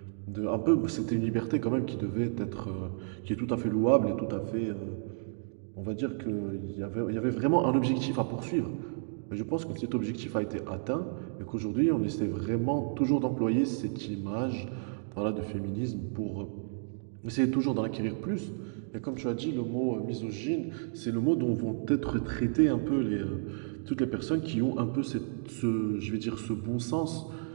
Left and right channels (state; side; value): silent; left; digital silence